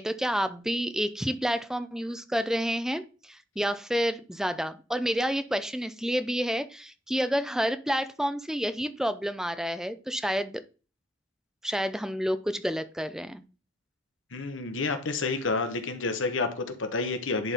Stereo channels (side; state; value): both; normal; correlation 0.72